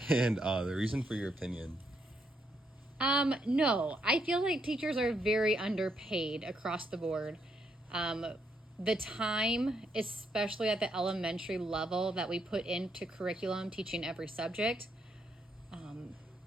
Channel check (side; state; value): both; normal; correlation 0.76